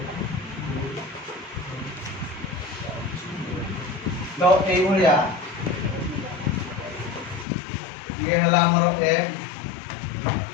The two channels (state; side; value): drops out; right; at 7.5 s